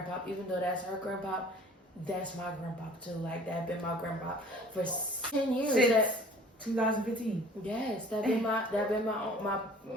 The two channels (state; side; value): normal; both; correlation 0.49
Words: even though that's her grandpa. That's my grandpa too. Like that been my grandpa for 10 years. Since 2015. Yes, that been my